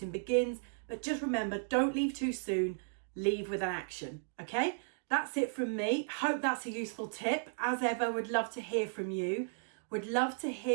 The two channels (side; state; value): left; silent; digital silence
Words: begins. But just remember, don't leave too soon, leave with an action, okay? That's it from me. Hope that's a useful tip. As ever, would love to hear from you. Would love to